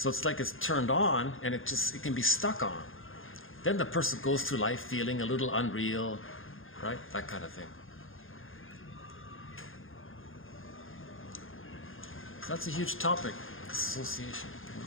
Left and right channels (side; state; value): right; late; 0.59 ms